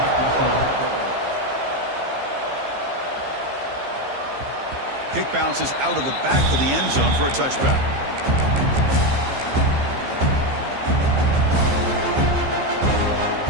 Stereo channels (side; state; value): left; late; 15 ms